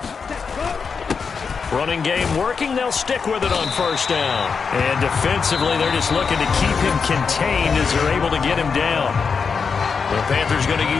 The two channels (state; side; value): quieter; right; 5.6 dB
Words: Running game working. They'll stick with it on first down. And defensively, they're just looking to keep him contained as they're able to get him down. The Panthers going to